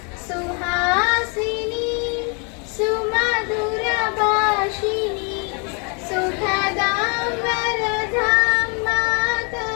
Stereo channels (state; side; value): quieter; right; 35.4 dB